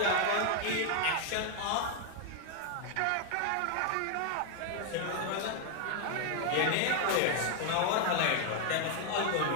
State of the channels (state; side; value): different; both; correlation 0.00